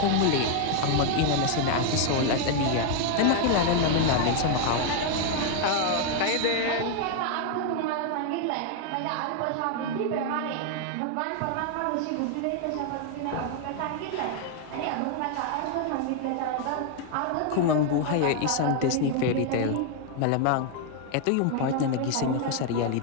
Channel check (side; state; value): both; different; correlation 0.00